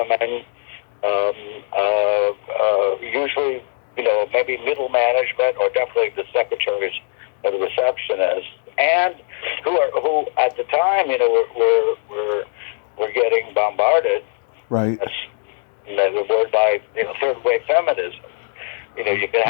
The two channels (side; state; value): right; silent; digital silence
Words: usually, maybe middle management, or definitely the secretaries or the receptionists, and who at the time, were getting bombarded. Right. That's the word by third wave feminism. You can